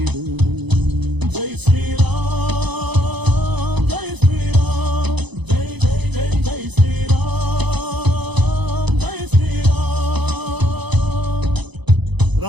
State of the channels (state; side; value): late; left; 0.99 ms